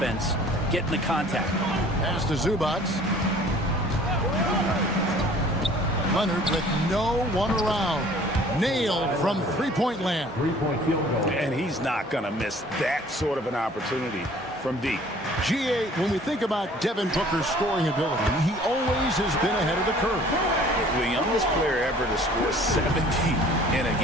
getting the contact. Pass to Zubac. Leonard with no one around. Nailed from three-point land. And he's not going to miss that sort of an opportunity from deep. GA, when we think about Devin Booker's scoring ability, he always has been ahead of the curve. The youngest player ever to score 70 in a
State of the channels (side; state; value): both; normal; correlation 0.52